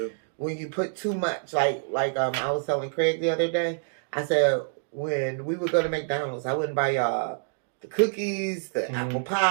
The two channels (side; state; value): left; silent; digital silence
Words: When you put too much, like I was telling Craig the other day, I said when we would go to McDonald's, I wouldn't buy y'all the cookies, the apple